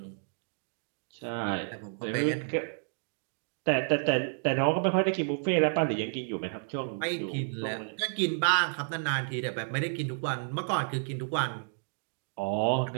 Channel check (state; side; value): silent; left; digital silence